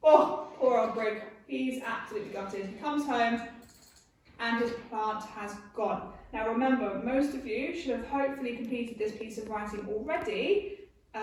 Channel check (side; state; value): both; identical; correlation 1.00